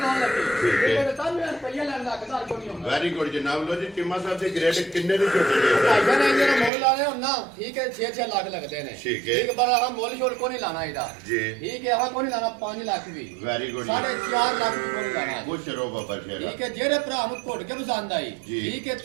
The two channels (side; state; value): left; drops out; at 6.7 s